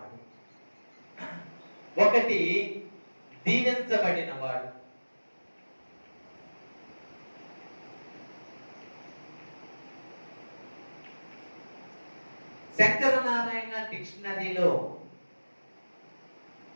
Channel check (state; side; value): inverted; both; correlation -1.00